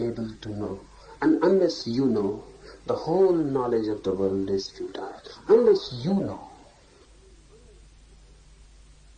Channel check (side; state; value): both; identical; correlation 1.00